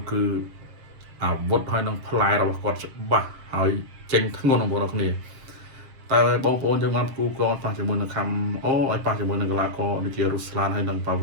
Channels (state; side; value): late; left; 7.5 ms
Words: ះគឺអាវុធហើយនឹងផ្លែរបស់គាត់ច្បាស់ហើយចេញធ្ងន់បងប្អូនអរគ្នាតែបងប្អូនយើងបានគូកងប៉ះជាមួយនឹងខំអូឲ្យប៉ះជាមួយនឹងកីឡាករដូចជារុស្លានហើយនឹងប៉ា